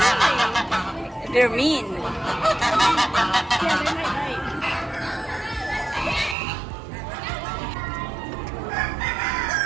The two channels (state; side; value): drops out; left; at 6.4 s